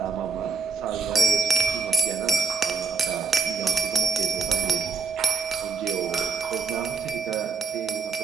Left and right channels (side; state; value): left; quieter; 4.9 dB